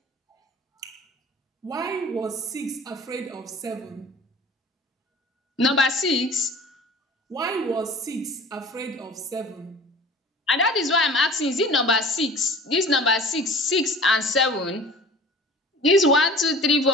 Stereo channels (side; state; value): both; normal; correlation 0.43